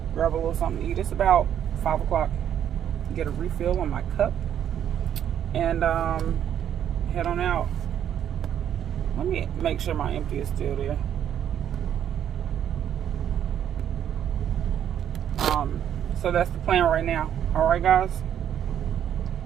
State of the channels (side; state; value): left; quieter; 9.8 dB